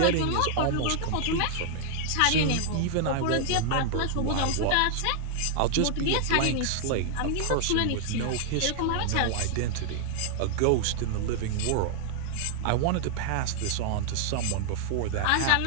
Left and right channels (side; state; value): both; different; correlation 0.00